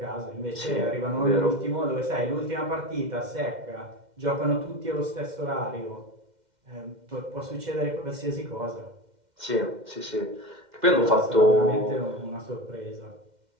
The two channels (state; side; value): late; left; 2.1 ms